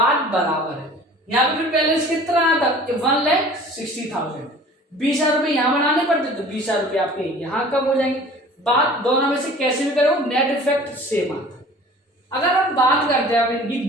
बराबर है। यहाँ पे फिर बैलेंस कितना आता 1,60,000, 20,000 रुपए यहाँ बनाने पड़ते तो 20,000 रुपए आपके यहाँ कम हो जाएंगे। बात दोनों में से कैसे भी करो नेट इफेक्ट सेम आता है। अगर हम बात करते हैं इनकी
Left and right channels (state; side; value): normal; both; correlation 0.46